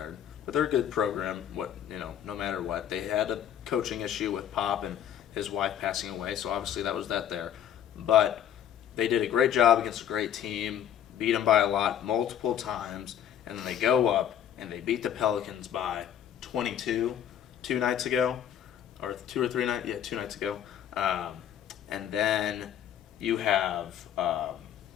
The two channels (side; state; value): right; quieter; 9.9 dB